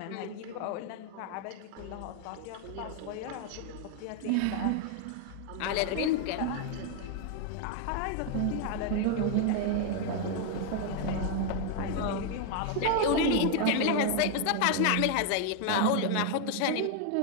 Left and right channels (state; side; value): different; both; correlation 0.01